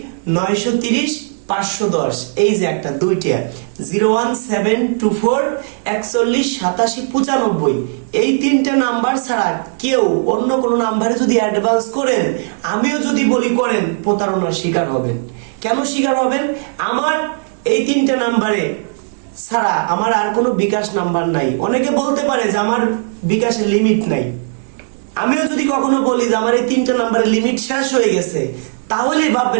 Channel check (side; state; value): left; silent; digital silence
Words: এই যে একটা, দুইটা 01724418795, এই 3টে নাম্বার ছাড়া কেউ অন্য কোনো নাম্বারে যদি অ্যাডভান্স করেন, আমিও যদি বলি করেন, প্রতারণার শিকার হবেন। কেন শিকার হবেন? আমার এই 3টে নাম্বারে ছাড়া আমার আর কোনো বিকাশ নাম্বার নাই। অনেকে বলতে পারে যে আমার বিকাশের লিমিট নাই। আমিও যদি কখনো বলি যে আমার এই 3টে নাম্বারের লিমিট শেষ হয়ে গেছে, তাহলেই